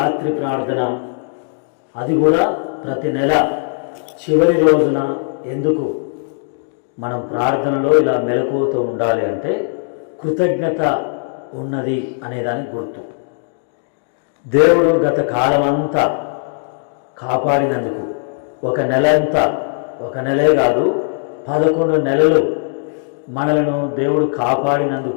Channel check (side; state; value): right; silent; 67 dB below the other